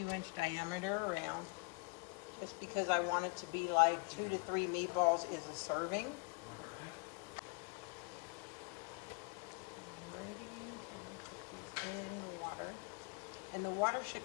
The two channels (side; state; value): right; quieter; 32.6 dB